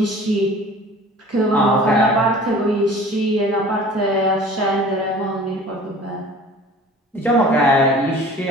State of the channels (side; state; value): both; normal; correlation 0.45